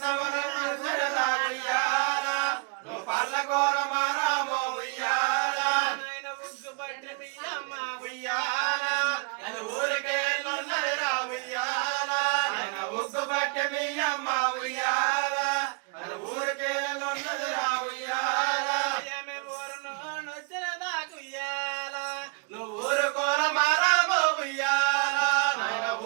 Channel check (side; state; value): left; quieter; 34.4 dB